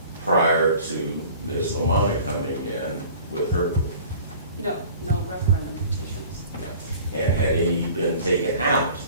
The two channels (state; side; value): inverted; both; correlation -0.46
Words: prior to Ms. Lamonna coming in with her group? no referendum petitions. And had any been taken out